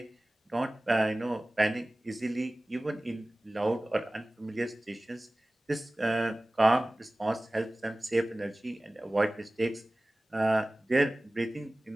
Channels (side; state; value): both; normal; correlation 0.98